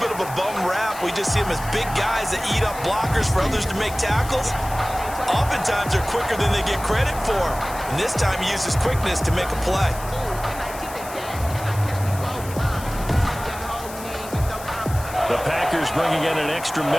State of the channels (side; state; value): left; noise; hiss, 14 dB below the sound